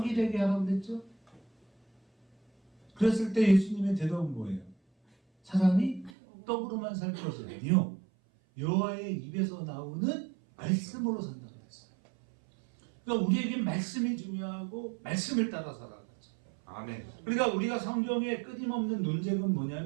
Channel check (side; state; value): left; drops out; at 6.1 s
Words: 되게 하라고 그랬죠? 그랬을 때 예수님의 대답은 뭐예요? 사람이 떡으로만 살 것이 아니요 여호와의 입에서 나오는 말씀으로 산다고 했어요. 그러니까 우리에겐 말씀이 중요하고 말씀을 따라 살아가죠. 아멘. 그러니까 우리가 성경에 끊임없는 논쟁은